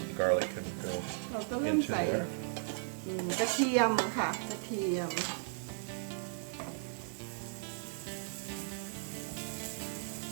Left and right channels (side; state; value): left; silent; digital silence